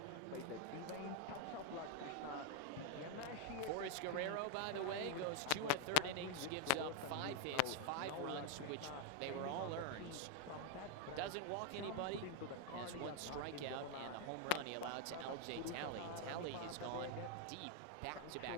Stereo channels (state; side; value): different; both; correlation 0.00